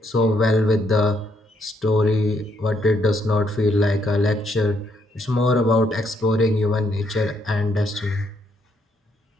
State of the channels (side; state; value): both; normal; correlation 0.73